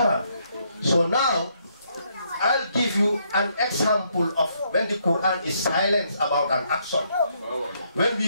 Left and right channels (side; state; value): both; inverted; correlation -0.73